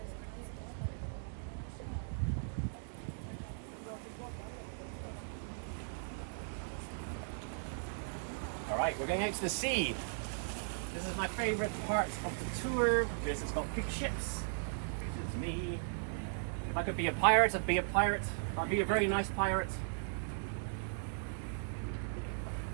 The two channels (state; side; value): silent; left; digital silence